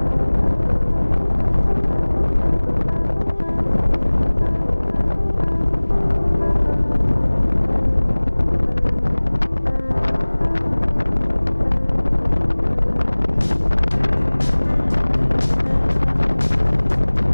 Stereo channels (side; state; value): both; inverted; correlation -1.00